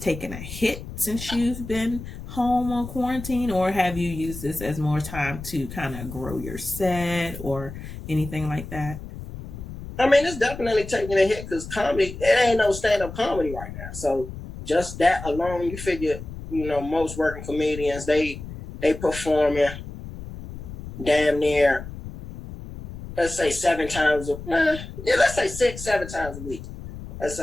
a hit since you've been home on quarantine, or have you used this as more time to kind of grow your set or anything like that? I mean, it's definitely taking a hit because comedy, it ain't no stand-up comedy right now. So just that alone, you figure, most working comedians, they performing damn near, let's say 7 times, let's say 6, 7 times a week. Let's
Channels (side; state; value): left; noise; rumble, 11 dB below the sound